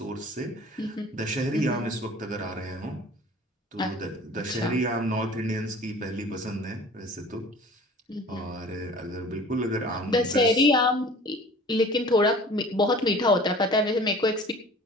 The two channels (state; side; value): normal; both; correlation 0.45